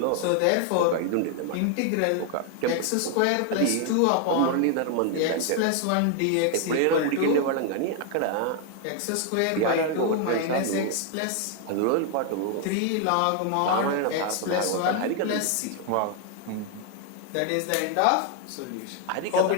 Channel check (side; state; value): both; different; correlation 0.00